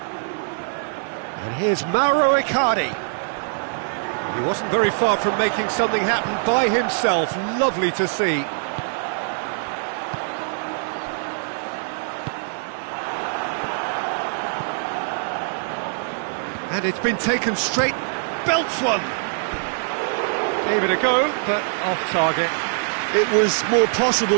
And here's Mauro Icardi. He wasn't very far from making something happen by himself. Lovely to see. And it's been taken straight, belts one. Gave it a go, but off target. It was more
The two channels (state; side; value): silent; left; 61 dB below the other